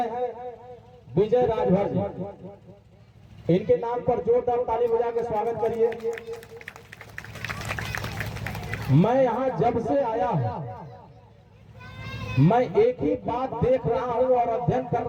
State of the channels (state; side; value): identical; both; correlation 1.00